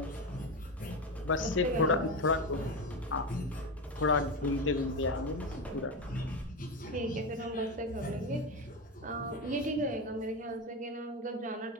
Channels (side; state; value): both; normal; correlation 0.17